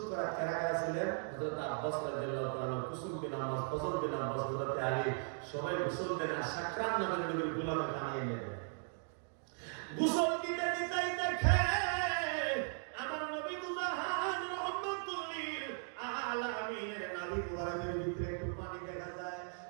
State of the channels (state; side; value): silent; left; 53 dB below the other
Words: করা কারা কারা ছিলেন? হযরত আব্বাস রাদিয়াল্লাহু তাআলা, কুসুম বিন আব্বাস, ফজল বিন আব্বাস, হযরত আলী, সবাই গোসল দেন। আর সাকরাত নামের নবীর গোলামে বানিয়ে নেন। গোসল দিতে দিতেই দেখে আমার নবী দুজাহান রাহমাতুল লিল আলামিনের নবী মুবারকের ভিতরে একটু পানি দেখা যায়।